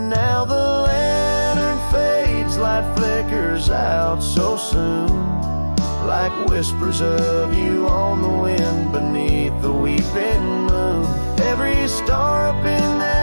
the lantern fades, light flickers out so soon, like whispers of you on the wind beneath the weeping moon. Every star up in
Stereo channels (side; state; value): both; inverted; correlation -1.00